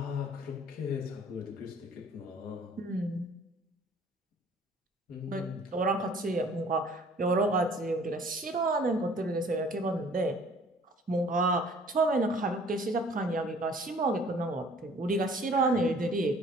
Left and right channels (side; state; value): both; normal; correlation 0.54